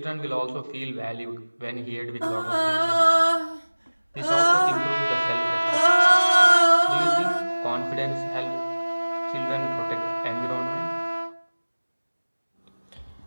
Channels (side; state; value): both; inverted; correlation -1.00